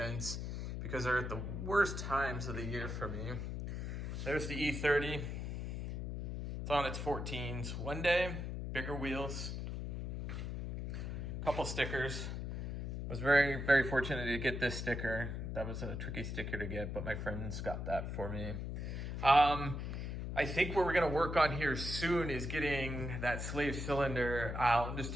because they're at the worst times of the year for me. There's the E30. It's on its 14s. One day, bigger wheels. Couple stickers. I was very fortunate to get this sticker. That was a tricky sticker to get, but my friends got that for me. I think what we're gonna work on here soon is getting that slave cylinder out. I'm just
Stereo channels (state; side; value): noise; left; hum, 4 dB below the sound